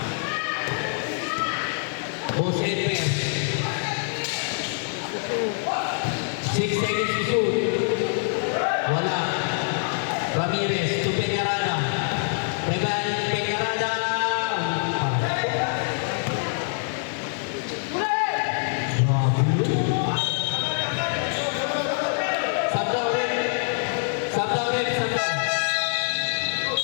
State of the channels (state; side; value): silent; right; 59 dB below the other